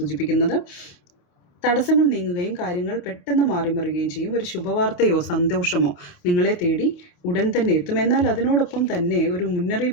തടസ്സങ്ങൾ നീങ്ങുകയും കാര്യങ്ങൾ പെട്ടെന്ന് മാറിമറിയുകയും ചെയ്യും. ഒരു ശുഭവാർത്തയോ സന്തോഷമോ നിങ്ങളെ തേടി ഉടൻ തന്നെ എത്തും. എന്നാൽ അതിനോടൊപ്പം തന്നെ ഒരു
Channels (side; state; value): right; late; 28 ms